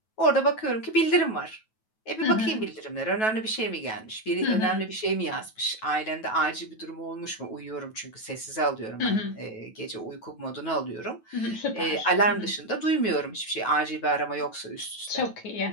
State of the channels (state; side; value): late; right; 9.2 ms